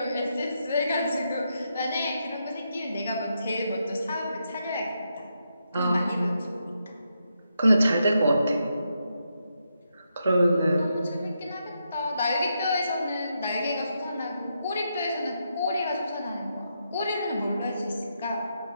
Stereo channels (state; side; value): inverted; both; correlation -0.82